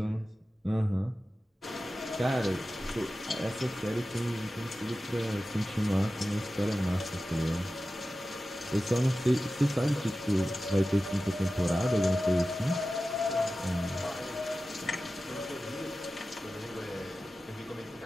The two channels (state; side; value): normal; both; correlation 0.94